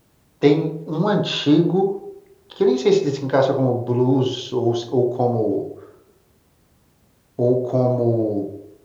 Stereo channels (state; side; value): identical; both; correlation 1.00